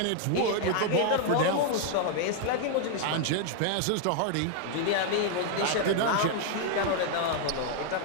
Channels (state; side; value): different; both; correlation 0.00